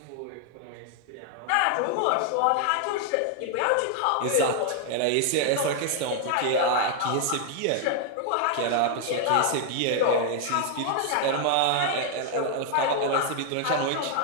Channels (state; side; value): different; both; correlation 0.00